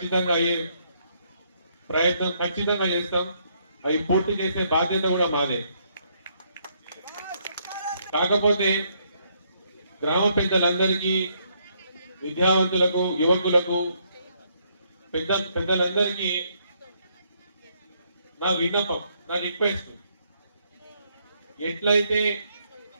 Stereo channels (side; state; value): both; inverted; correlation -0.71